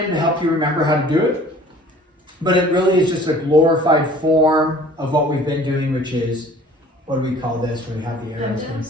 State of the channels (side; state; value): both; normal; correlation 0.50